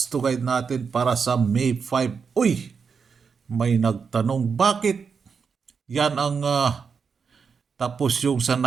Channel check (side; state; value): left; quieter; 5.8 dB